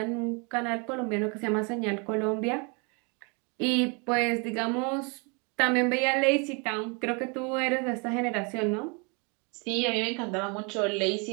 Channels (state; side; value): quieter; left; 33.0 dB